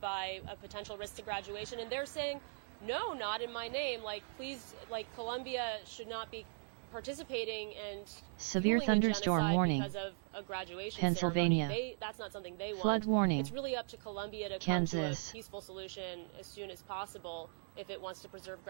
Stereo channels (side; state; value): left; silent; digital silence